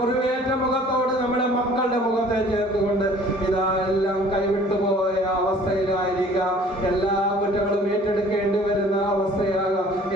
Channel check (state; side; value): normal; both; correlation 0.52